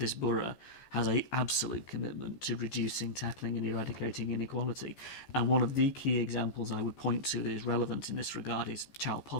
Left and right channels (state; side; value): late; right; 15 ms